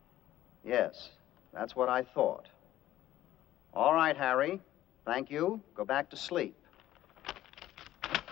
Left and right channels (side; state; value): right; quieter; 13.9 dB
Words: Yes, that's what I thought. All right, Harry. Thank you. Go back to sleep.